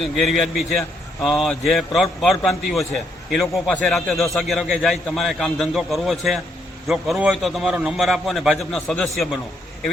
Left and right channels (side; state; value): both; normal; correlation 0.74